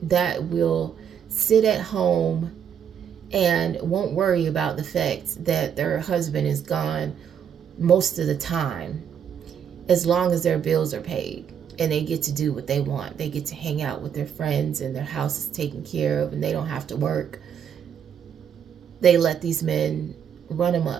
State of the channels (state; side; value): quieter; left; 8.3 dB